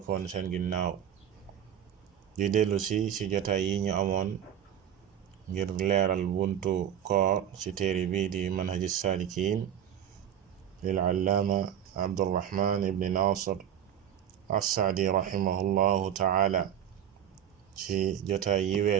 seen ginnaaw. di dellu si jotaay yi ñu amoon ngir leeral buntu koor ci téere bi di manhaji saalikiin lil allaama abdurrahman ibni nasir assaadi rahimahullahu taala. ci jotaay yi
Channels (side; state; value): left; quieter; 9.6 dB